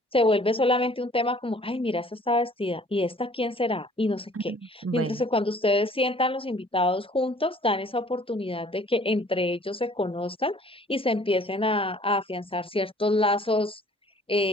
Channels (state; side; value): normal; both; correlation 0.55